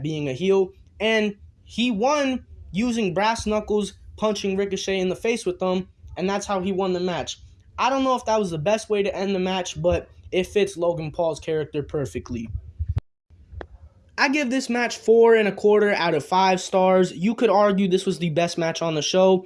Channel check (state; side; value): identical; both; correlation 1.00